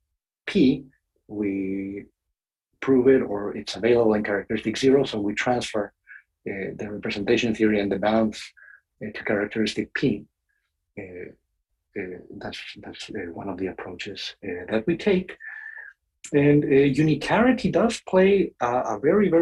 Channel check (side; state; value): both; identical; correlation 1.00